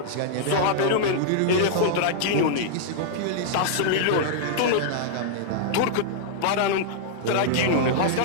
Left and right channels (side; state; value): both; different; correlation -0.01